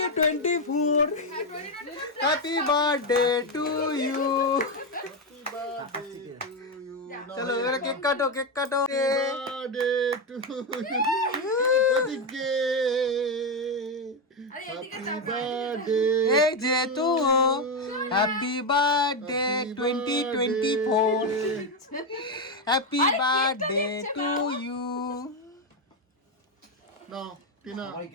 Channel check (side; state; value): both; normal; correlation 0.08